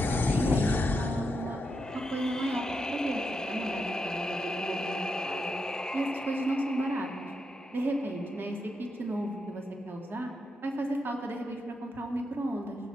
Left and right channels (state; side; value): normal; both; correlation 0.84